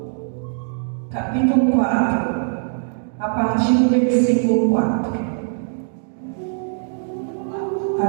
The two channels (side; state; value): left; silent; 65 dB below the other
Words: capítulo 4, a partir do versículo 4.